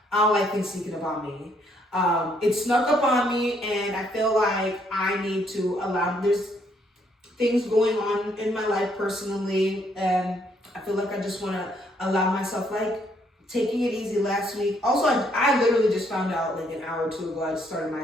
I don't like things sneaking up on me. It snuck up on me, and I feel like I need to there's things going on in my life personally, and I feel like I just want to allow myself, taking it easy last week. Also, I literally just found out an hour or 2 ago, I just started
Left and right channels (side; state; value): both; normal; correlation 0.70